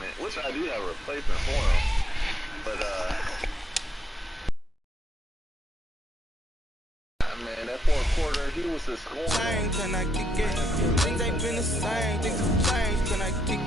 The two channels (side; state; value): both; normal; correlation 0.77